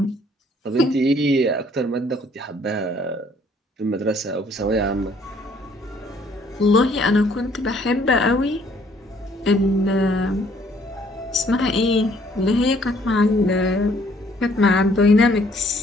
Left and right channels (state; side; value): normal; both; correlation 0.62